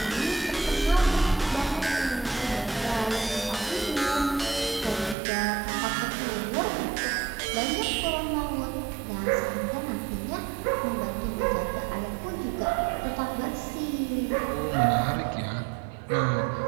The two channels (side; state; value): left; drops out; at 5.2 s